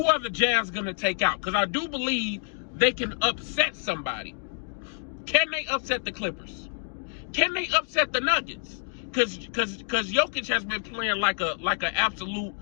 are the Jazz going to take out? Because I do believe they can upset somebody. Can they upset the Clippers? Can they upset the Nuggets? Because Jokic has been playing like an absolute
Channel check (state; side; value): silent; right; 60 dB below the other